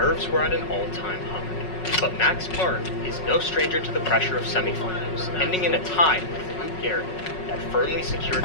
were at an all-time high. But Max Park is no stranger to the pressure of semifinals, ending in a tie with Luke Garrett that firmly secured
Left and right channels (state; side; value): late; right; 5.4 ms